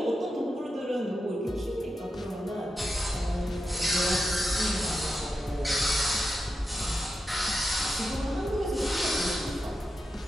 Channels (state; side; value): normal; both; correlation 0.89